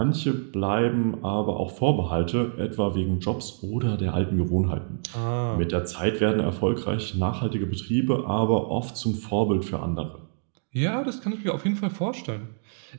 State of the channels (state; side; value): silent; left; digital silence